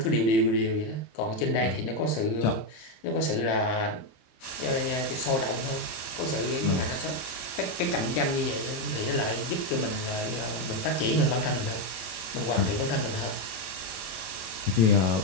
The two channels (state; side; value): late; right; 27 ms